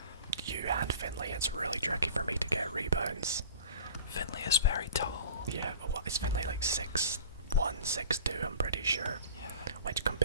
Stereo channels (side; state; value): both; inverted; correlation -0.42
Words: you and Finley, it's really tricky for me to get rebounds. Finley is very tall. Yeah, what is Finley like 6'1", 6'2", I'm pretty sure. Yeah. Which,